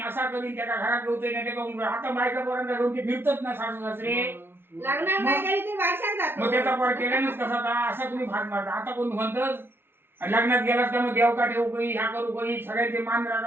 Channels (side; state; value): left; late; 0.11 ms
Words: असा करीन त्याला घरात घेऊते नाही त्याचा आता बायका पर्यंत घेऊन ते फिरतच ना सासू सासरे मग त्याचा पर केल्यानंच कसा था असा तुम्ही भाग मारता आता कोण म्हणतच लग्नात गेलास का मग देवका ठेवू काही ह्या करू काही सगळ्यांचे मान